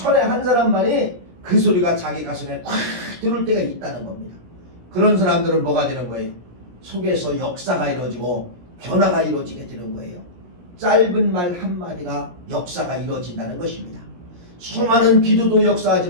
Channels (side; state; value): left; late; 17 ms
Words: 한 사람만이 그 소리가 자기 가슴에 꽉 들어올 때가 있다는 겁니다. 그런 사람들은 뭐가 되는 거예요? 속에서 역사가 이루어지고 변화가 이루어지게 되는 거예요. 짧은 말 한마디가 역사가 이루어진다는 것입니다. 수많은 기도도